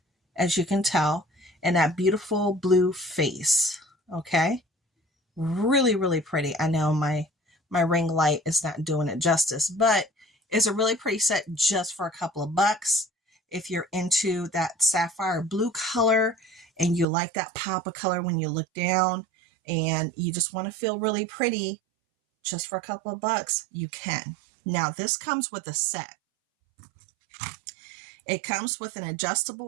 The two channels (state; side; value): drops out; left; at 17.1 s